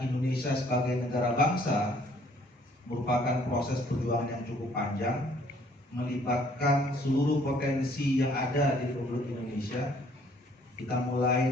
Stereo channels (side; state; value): both; normal; correlation 0.61